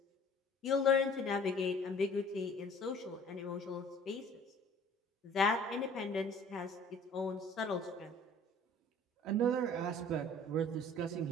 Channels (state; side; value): normal; both; correlation 0.50